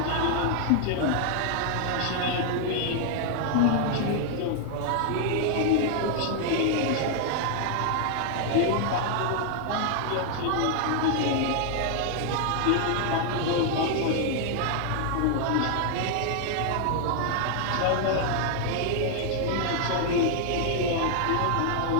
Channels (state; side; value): different; both; correlation 0.00